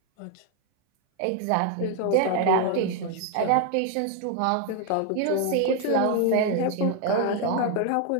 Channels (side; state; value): both; different; correlation 0.01